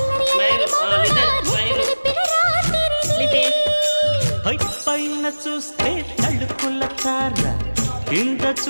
పైన చూస్తే తడుకుల తార కింద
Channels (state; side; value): inverted; both; correlation -1.00